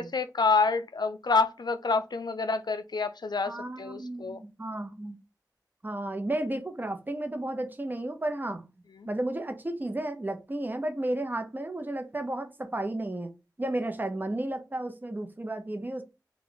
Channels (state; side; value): normal; both; correlation 0.67